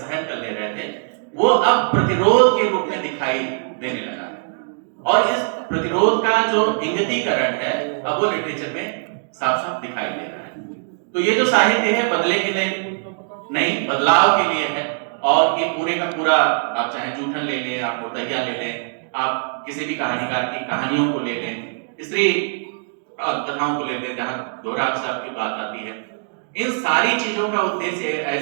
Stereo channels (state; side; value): silent; left; digital silence